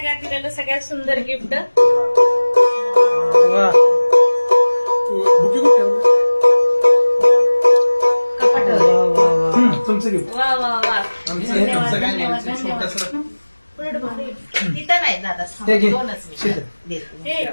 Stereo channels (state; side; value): inverted; both; correlation -1.00